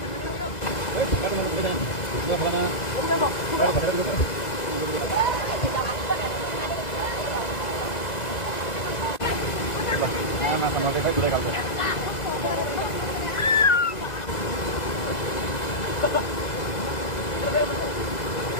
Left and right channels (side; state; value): right; late; 2.0 ms